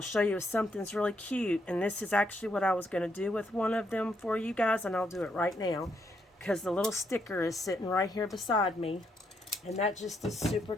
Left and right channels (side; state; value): both; normal; correlation 0.76